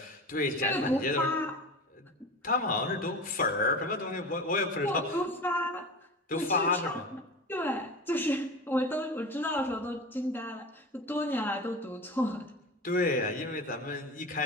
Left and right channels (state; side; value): normal; both; correlation 0.31